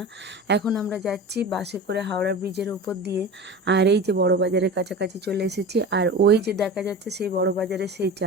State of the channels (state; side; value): normal; both; correlation 0.31